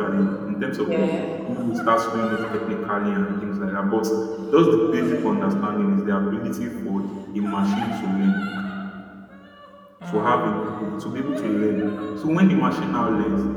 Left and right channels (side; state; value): both; identical; correlation 1.00